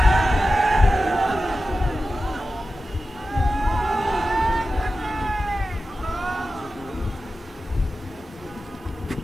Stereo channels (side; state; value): both; normal; correlation 0.93